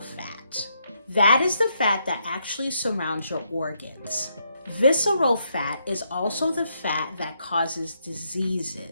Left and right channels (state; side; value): inverted; both; correlation -0.77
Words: fat. That is the fat that actually surrounds your organs. Visceral fat is also the fat that causes